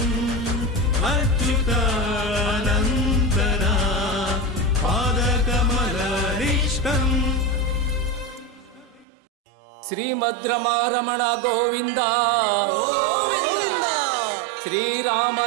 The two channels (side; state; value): left; drops out; at 9.1 s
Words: अच्युतानंतना पादकमल निष्ठं ಶ್ರೀಮದ್ರಮಾರಮಣ ಗೋವಿಂದ ಶ್ರೀರಾಮ